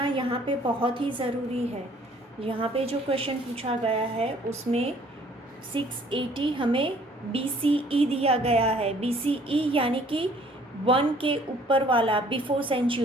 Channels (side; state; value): both; normal; correlation 0.58